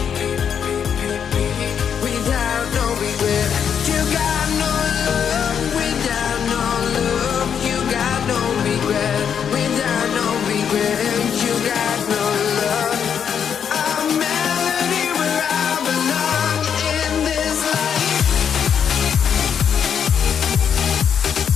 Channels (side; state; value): right; quieter; 7.8 dB